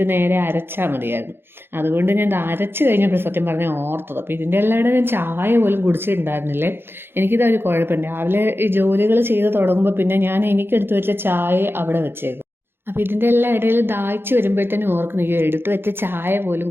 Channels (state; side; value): late; left; 0.11 ms